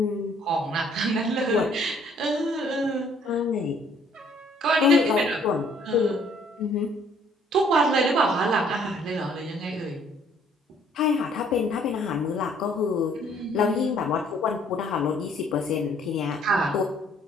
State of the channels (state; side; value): normal; both; correlation 0.61